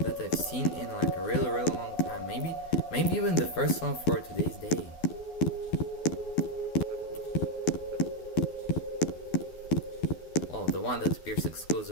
I've seen in like a really long time. Maybe even the first one for today's day. Oh, the one that appears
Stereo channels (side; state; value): right; late; 12 ms